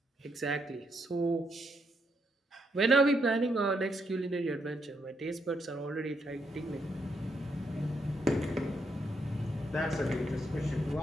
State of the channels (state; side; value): normal; both; correlation 0.77